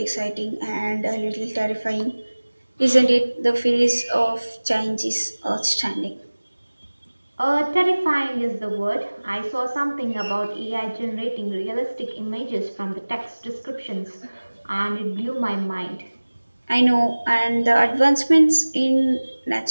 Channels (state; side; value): inverted; both; correlation -1.00